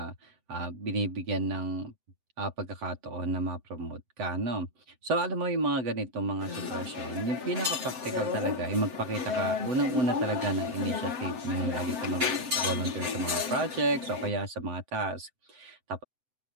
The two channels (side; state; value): left; late; 7.8 ms